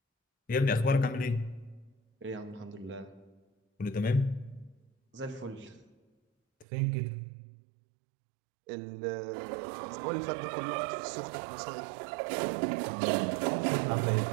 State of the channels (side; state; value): left; drops out; at 6.7 s